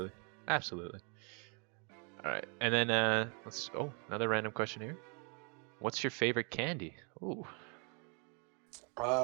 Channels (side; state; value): left; quieter; 36.4 dB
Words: absolutely. All right, and then let's. Oh, another random question here. What's your favorite candy? Ooh.